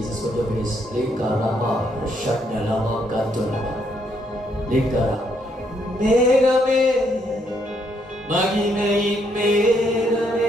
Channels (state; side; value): normal; both; correlation 0.73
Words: with the face likarama shanalama katulama likara megame magimein